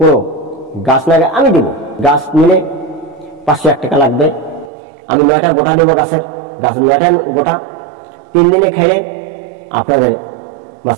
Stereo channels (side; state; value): left; drops out; at 4.7 s